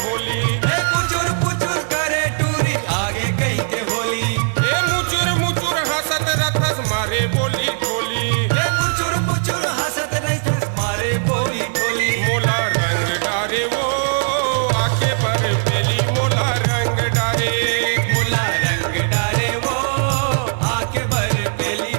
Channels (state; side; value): silent; left; digital silence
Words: होली। पुचुर पुचुर करे टूरी आगे कही के होली। ए मुचुर मुचुर हंसत रथस मारे बोली ठोली। मुचुर मुचुर हंसत रथस मारे बोली बोली। मोला रंग डारे वो आके बर पेली मोला रंग डारे। मोला रंग डारे वो आके बर पेली